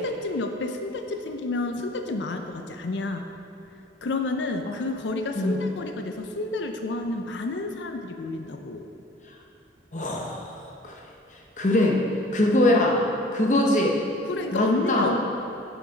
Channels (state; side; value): normal; both; correlation 0.47